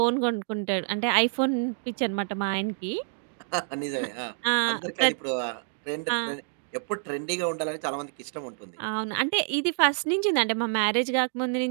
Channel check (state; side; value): silent; left; digital silence